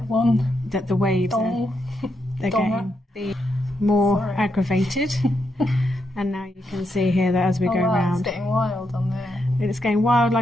that the waves they're getting more aggravated. And now you can see here that as we go around, it's getting wild on there. It's going wild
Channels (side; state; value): both; normal; correlation 0.82